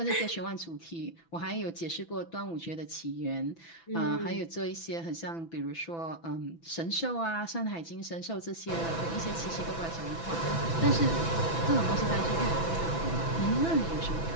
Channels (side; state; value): right; late; 6.0 ms